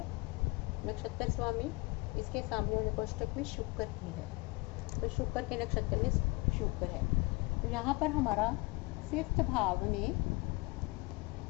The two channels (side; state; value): right; quieter; 26.0 dB